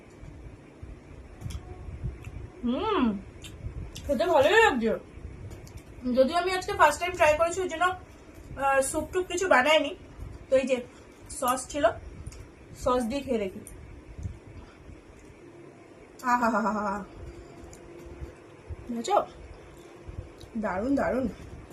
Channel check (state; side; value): identical; both; correlation 1.00